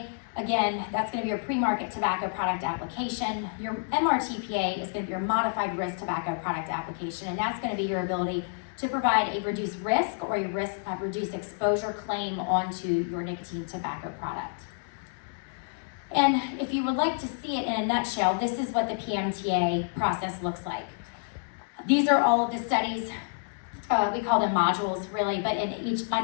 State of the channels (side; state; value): right; silent; digital silence